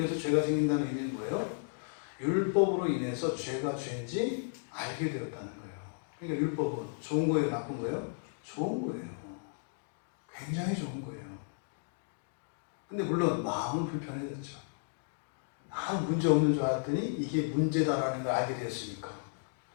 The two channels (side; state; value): right; silent; digital silence